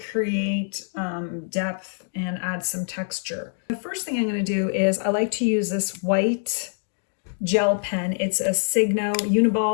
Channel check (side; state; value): right; silent; digital silence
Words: create depth and add some texture. The first thing I'm going to do is I like to use this white gel pen. It's a